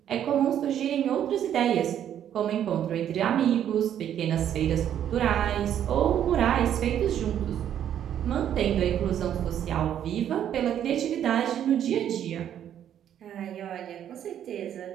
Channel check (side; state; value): left; quieter; 10.1 dB